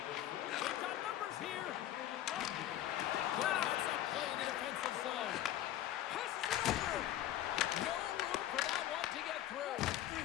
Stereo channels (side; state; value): right; quieter; 13.0 dB